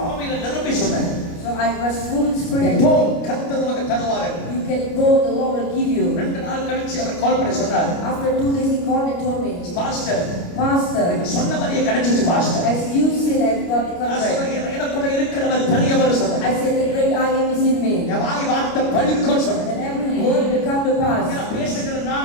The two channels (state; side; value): late; right; 29 ms